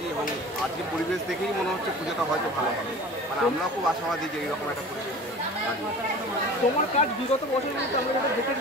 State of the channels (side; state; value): both; normal; correlation 0.40